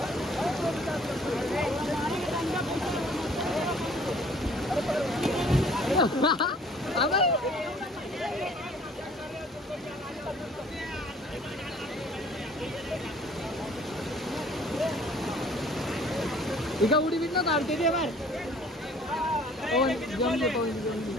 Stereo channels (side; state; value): both; normal; correlation 0.55